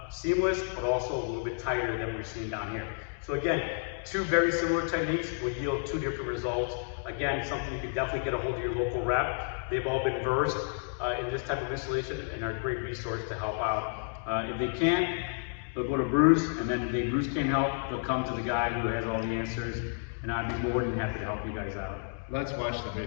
seamless, but also a little bit tighter than we're seeing down here. So again, 2 very similar techniques will yield 2 different results. Again, something you can definitely get a hold of your local rep. They've all been versed in this type of installation and are a great resource to help out. If they can't, they'll go to Bruce, and then if Bruce can't help, they'll come to the guy who has all the answers, and I'd be more than happy to help you guys out. Let's watch the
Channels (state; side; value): silent; right; digital silence